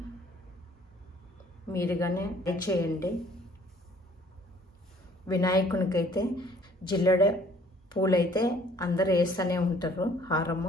మీరుగానే ట్రై చేయండి. వినాయకునికైతే జిల్లెడ పూలైతే అందరూ వేస్తూనే ఉంటారు.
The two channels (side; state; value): both; normal; correlation 0.57